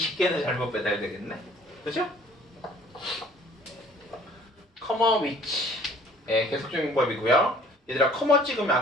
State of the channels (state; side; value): normal; both; correlation 0.55